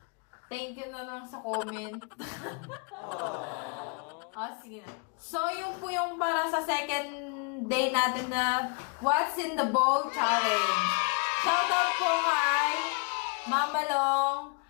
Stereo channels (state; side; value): quieter; right; 35.1 dB